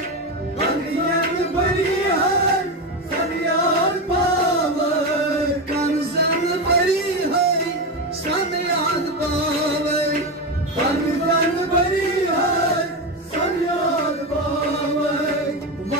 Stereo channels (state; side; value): normal; both; correlation 0.15